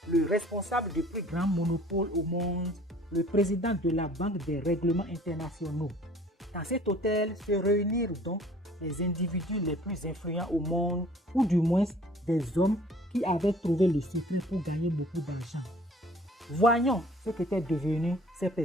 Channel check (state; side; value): normal; both; correlation 0.52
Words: le responsable du plus grand monopole au monde, le président de la Banque des règlements internationaux. Dans cet hôtel se réunirent donc les individus les plus influents au monde, ou du moins des hommes qui avaient trouvé le secret pour gagner beaucoup d'argent. Voyons ce qu'étaient devenues ces